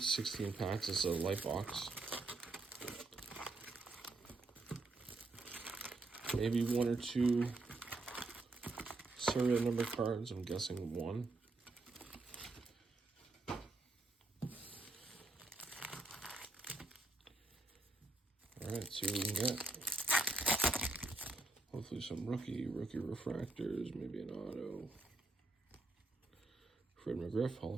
16 packs. It's a Lite box. Maybe one or two serial number cards. I'm guessing one. Alright, see what we can get. Hopefully some rookie refractors, maybe an auto. Fred McGriff, Hall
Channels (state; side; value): quieter; left; 3.1 dB